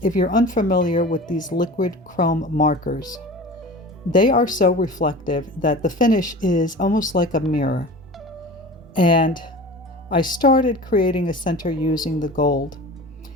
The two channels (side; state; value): both; normal; correlation 0.36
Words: if you're unfamiliar with these liquid chrome markers, they are so reflective that the finish is almost like a mirror. And I started creating a center using the gold,